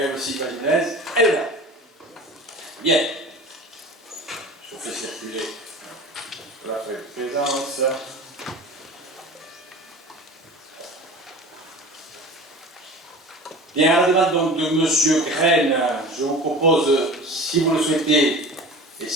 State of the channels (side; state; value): both; normal; correlation 0.37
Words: aussi, Valinez, elle est là. Bien. Je fais circuler la présence. Bien, à la demande donc de M. Graine, je vous propose, si vous le souhaitez, et